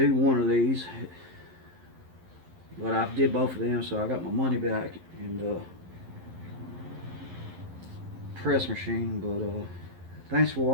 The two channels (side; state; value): left; late; 11 ms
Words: one of these. But I did both of them, so I got my money back and press machine. But thanks for